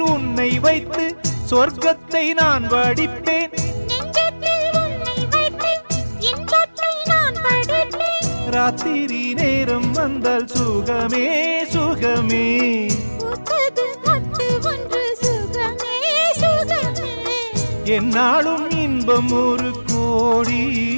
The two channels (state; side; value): inverted; both; correlation -1.00